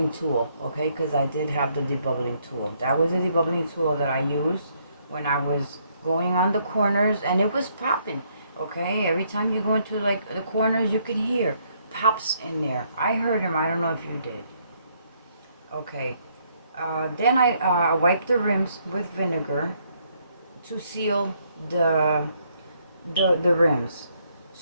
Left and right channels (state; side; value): inverted; both; correlation -0.71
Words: tool, okay? Because I did have the debubbling tool. That was the debubbling tool that I used when I was going on the corners, and it was popping, okay? Every time you go into like the corners, you can hear pops in there. I heard them. I don't know if you did. Okay. Then I wiped the rims with vinegar to seal the rims.